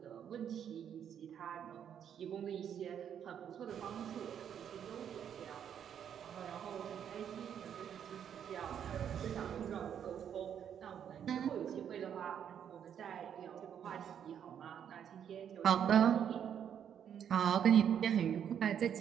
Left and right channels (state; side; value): quieter; left; 8.8 dB